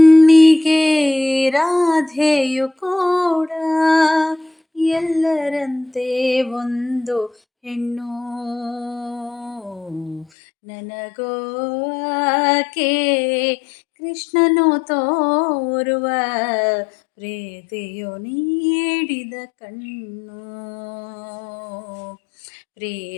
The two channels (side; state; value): right; drops out; at 10.2 s